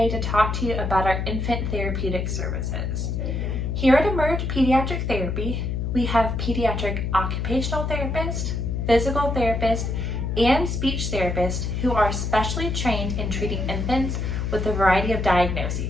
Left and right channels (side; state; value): left; noise; hum, 1 dB below the sound